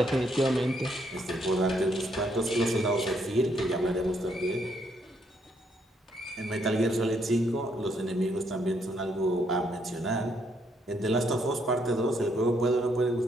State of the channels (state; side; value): normal; both; correlation 0.73